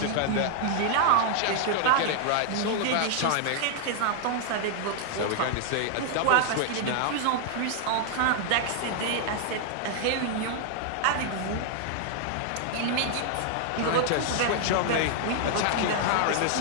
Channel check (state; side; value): different; both; correlation -0.01